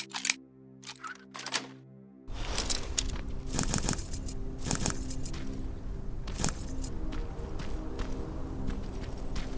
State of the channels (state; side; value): identical; both; correlation 1.00